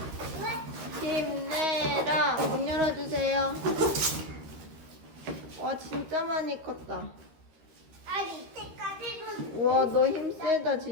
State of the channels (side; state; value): left; late; 13 ms